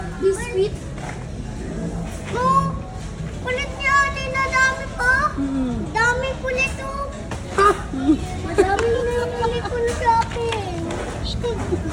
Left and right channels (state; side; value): identical; both; correlation 1.00